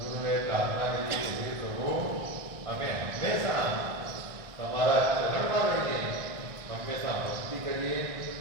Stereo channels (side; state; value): left; late; 1.6 ms